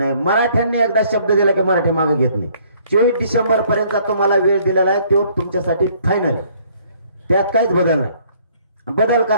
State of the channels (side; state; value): both; inverted; correlation -0.61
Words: मराठ्यांनी एकदा शब्द दिला की मराठी मागे घेत नाही. 24 डिसेंबर पर्यंत तुम्हाला वेळ दिलेला आहे, तो तुमच्यासाठी फायनल आहे. त्यात काहीच बदल नाही, बदल